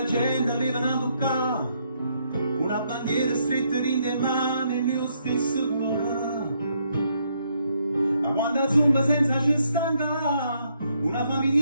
gente aveva a toccare, una bandiera stretta in le mani, il mio stesso cuore. Ma quando zumba senza ci stanca, una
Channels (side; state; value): both; inverted; correlation -0.74